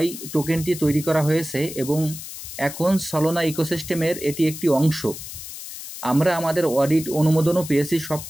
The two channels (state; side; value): noise; left; hiss, 11 dB below the sound